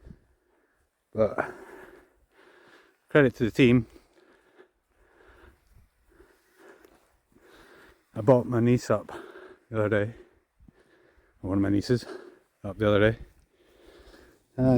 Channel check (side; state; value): both; identical; correlation 1.00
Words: But credit to the team. I bought my niece up the other day, or one of my nieces up the other day,